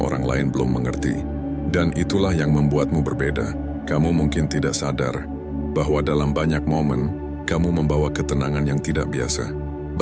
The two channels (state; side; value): identical; both; correlation 1.00